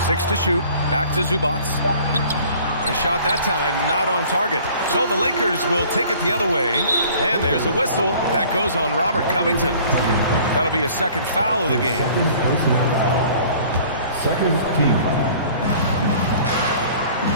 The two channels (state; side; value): inverted; both; correlation -0.51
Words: 6 to shoot. Back to Zubac. The shot that time not on target. So the Lakers will take it the other way. And there's a whistle. That goes on Robert Covington. That'll be a second foul of the game. Second personal foul. Second team foul.